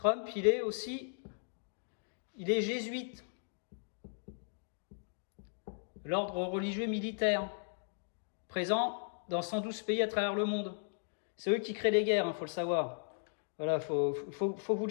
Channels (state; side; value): silent; right; digital silence